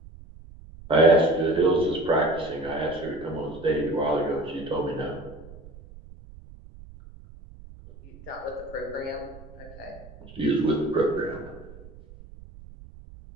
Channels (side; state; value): right; noise; rumble, 19 dB below the sound